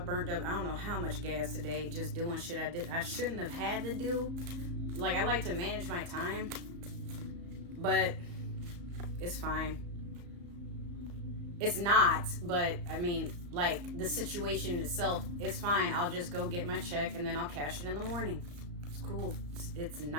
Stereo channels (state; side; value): late; left; 34 ms